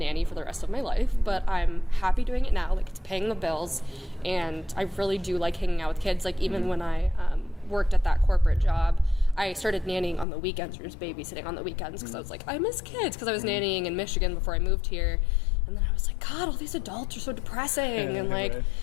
for the rest of my life, but I'm happy doing it now. Like, it's paying the bills. And I really do like hanging out with kids. Like, even when I worked at that corporate job, I started nannying on the weekends or just babysitting on the weekends because I was like, I miss kids, because I was nannying in Michigan before I moved here. And then I was like, God, all these adults are so depressing. And like,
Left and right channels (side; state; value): right; drops out; at 10.2 s